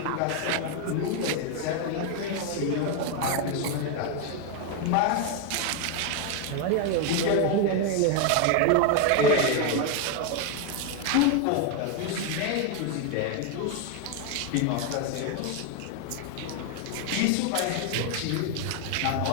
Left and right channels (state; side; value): different; both; correlation 0.01